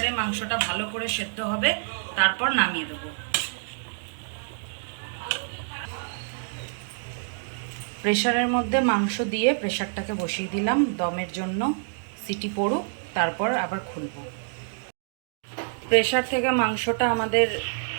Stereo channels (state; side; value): silent; left; digital silence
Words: মাংসটা ভালো করে সেদ্ধ হবে, তারপর নামিয়ে দেবো। প্রেসারের মধ্যে মাংস দিয়ে প্রেসারটাকে বসিয়ে দিলাম দমের জন্য। সিটি পড়ুক, তারপর আবার খুলবো। প্রেসার থেকে মাংসটা আমাদের